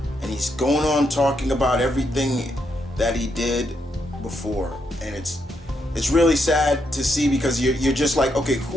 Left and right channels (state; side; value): normal; both; correlation 0.79